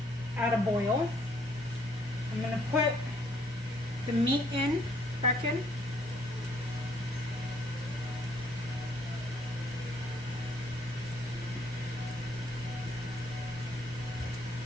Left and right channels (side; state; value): both; normal; correlation 0.66